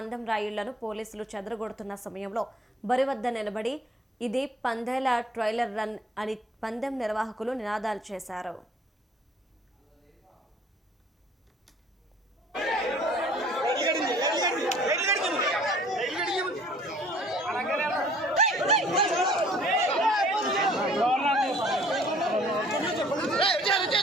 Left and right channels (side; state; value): both; normal; correlation 0.55